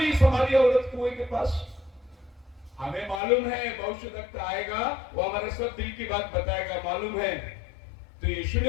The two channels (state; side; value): drops out; right; at 3.2 s